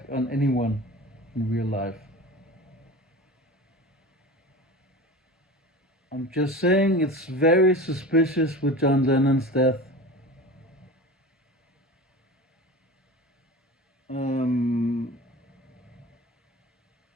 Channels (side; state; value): both; normal; correlation 0.33